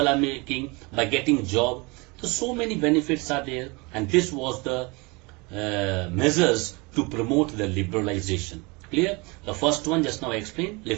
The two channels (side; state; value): left; quieter; 27.1 dB